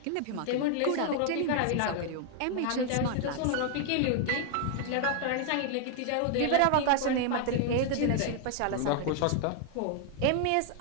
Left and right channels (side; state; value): both; different; correlation 0.00